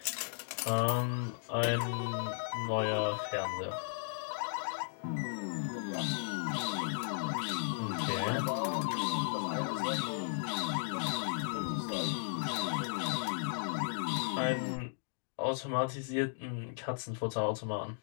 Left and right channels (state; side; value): silent; right; digital silence